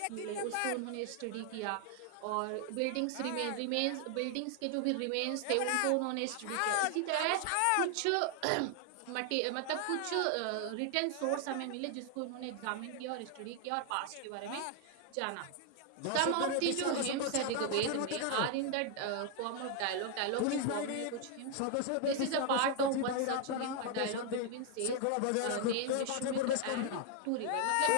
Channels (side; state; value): both; different; correlation 0.00